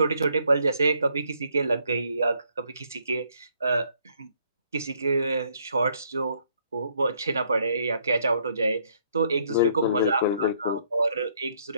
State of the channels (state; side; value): inverted; both; correlation -0.68